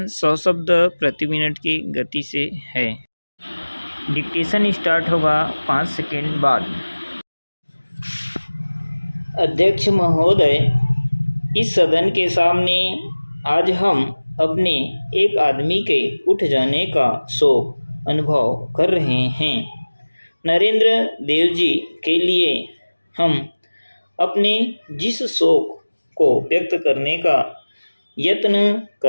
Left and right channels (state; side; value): inverted; both; correlation -1.00